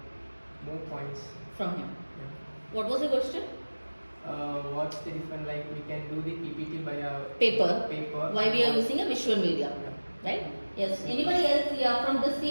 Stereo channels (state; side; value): inverted; both; correlation -1.00